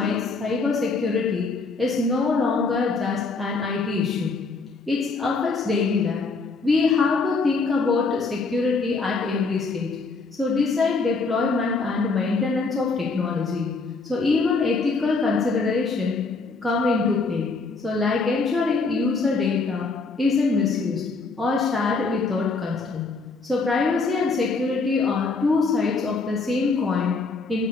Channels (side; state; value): right; quieter; 4.1 dB